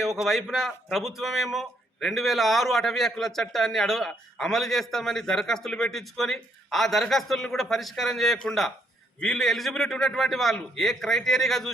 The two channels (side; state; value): both; normal; correlation 0.71